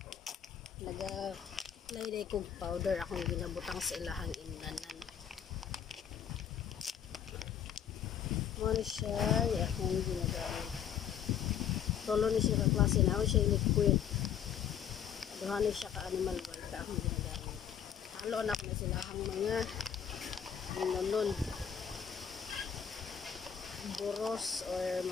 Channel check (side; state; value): right; quieter; 8.7 dB